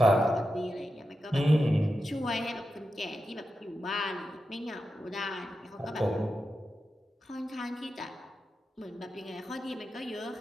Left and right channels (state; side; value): normal; both; correlation 0.90